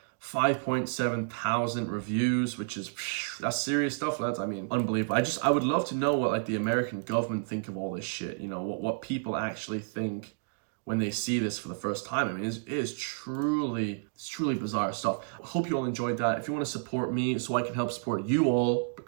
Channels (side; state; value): left; silent; digital silence